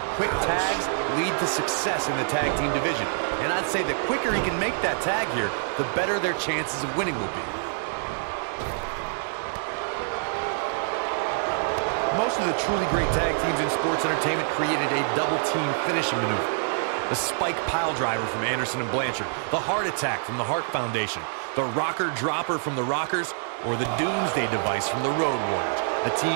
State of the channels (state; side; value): silent; left; digital silence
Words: quick tags lead to success in the tag team division. And I'd say the quicker he can make that tag here, the better their chances of winning will be. Most of the truly great tag teams in sports entertainment created a double team finishing maneuver. The spike pile driver from Anderson and Blanchard, the heart attack from the Hart Foundation, the rocker dropper from the Rockers, or the Doomsday device from the Road Warriors. A team